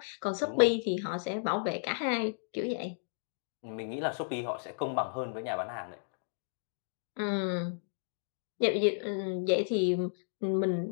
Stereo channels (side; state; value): right; silent; digital silence